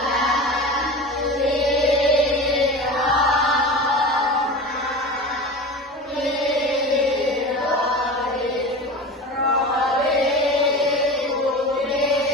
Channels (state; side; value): normal; both; correlation 0.30